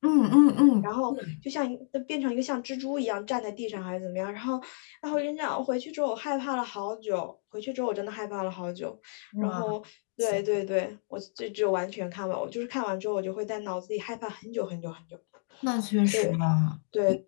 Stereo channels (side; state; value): right; silent; digital silence